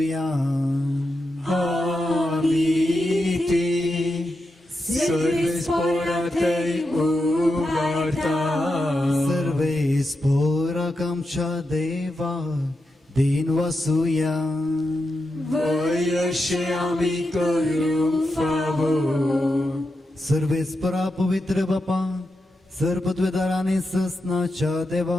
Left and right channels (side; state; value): both; normal; correlation 0.87